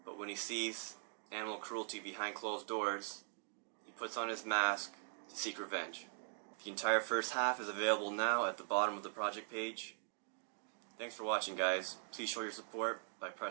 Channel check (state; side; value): silent; left; digital silence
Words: but when he sees animal cruelty behind closed doors, he puts on his mask to seek revenge. The entire first half is available now at the bottom of the project page. Thanks for watching, guys. Please show your support by